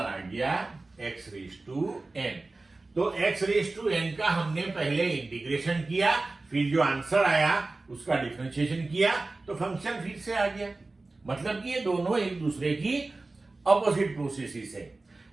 गया x रेज टू n। तो x रेज टू n का हमने पहले इंटीग्रेशन किया, फिर जो आंसर आया उसका डिफरेंशिएशन किया, तो फंक्शन फिर से आ गया। मतलब कि ये दोनों एक दूसरे की ऑपोजिट प्रोसेसेस है।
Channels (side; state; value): left; quieter; 3.3 dB